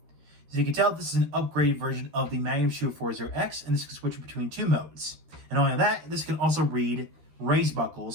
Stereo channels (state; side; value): late; left; 13 ms